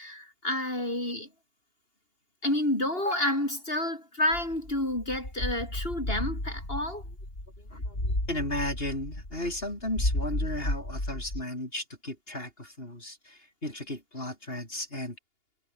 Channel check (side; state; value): right; late; 2.8 ms